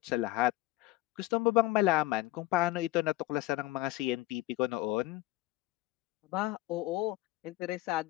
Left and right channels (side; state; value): right; quieter; 17.3 dB